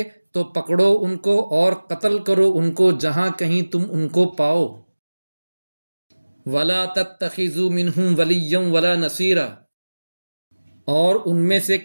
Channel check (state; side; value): inverted; both; correlation -1.00